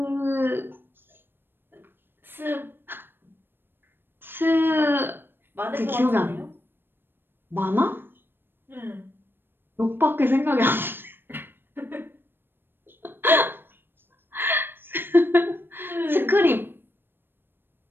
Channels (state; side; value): late; left; 0.099 ms